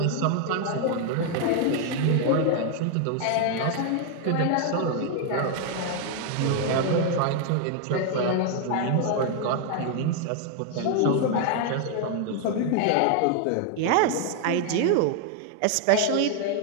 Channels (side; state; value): both; different; correlation 0.00